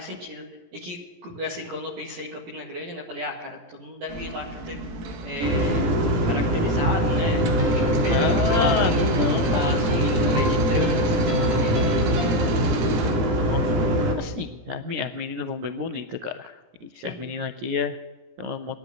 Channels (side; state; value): left; late; 17 ms